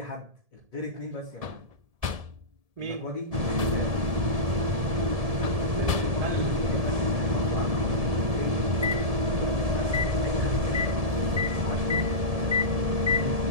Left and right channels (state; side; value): late; left; 1.7 ms